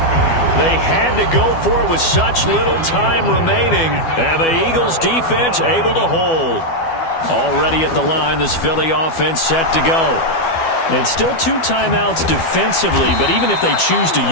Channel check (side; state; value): right; late; 12 ms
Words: They had to go for it with such little time remaining, and the Eagles defense able to hold. Already at the line, this Philly offense set to go. And still 2 timeouts defensively, but even if they choose to